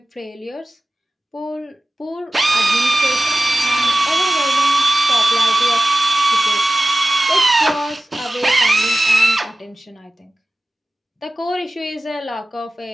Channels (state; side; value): normal; both; correlation 0.96